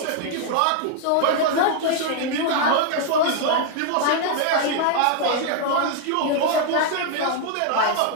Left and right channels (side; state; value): both; different; correlation 0.00